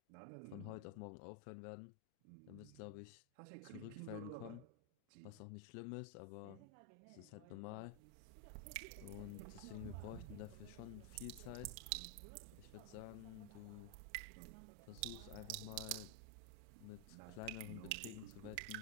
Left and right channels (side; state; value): both; different; correlation 0.01